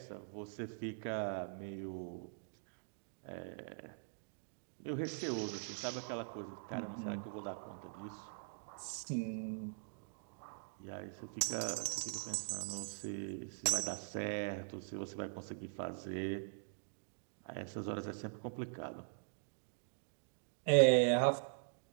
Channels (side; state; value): left; silent; digital silence